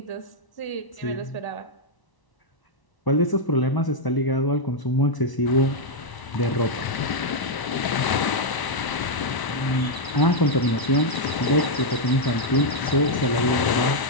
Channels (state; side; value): late; right; 1.0 ms